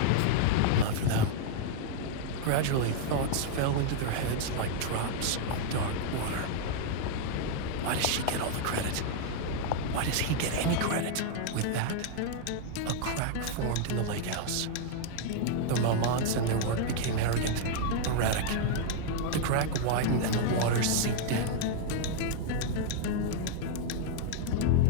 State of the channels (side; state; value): both; different; correlation 0.00